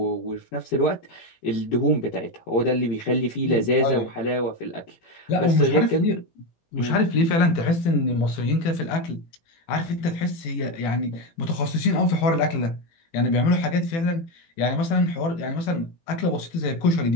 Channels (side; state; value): right; late; 18 ms